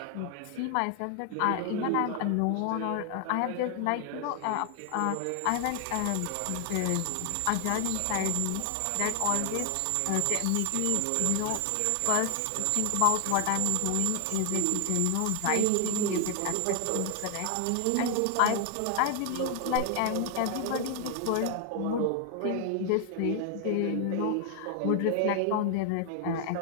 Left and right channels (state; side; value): different; both; correlation 0.00